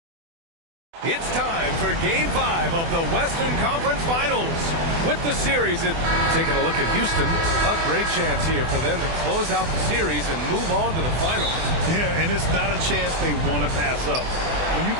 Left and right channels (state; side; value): late; left; 24 ms